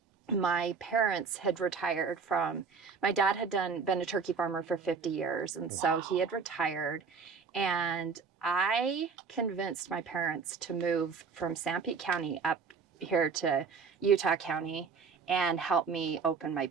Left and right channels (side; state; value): left; quieter; 5.4 dB